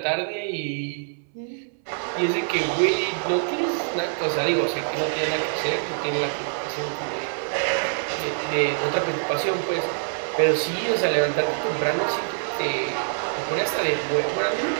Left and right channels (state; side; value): silent; left; 62 dB below the other